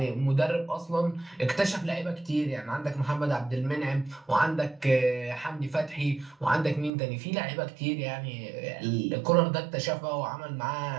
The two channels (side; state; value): left; drops out; at 6.9 s